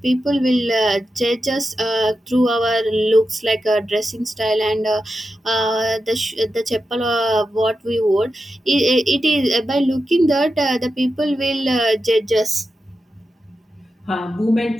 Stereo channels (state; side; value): normal; both; correlation 0.90